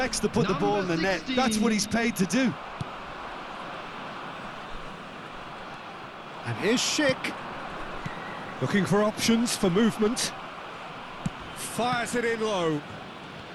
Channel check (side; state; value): both; identical; correlation 1.00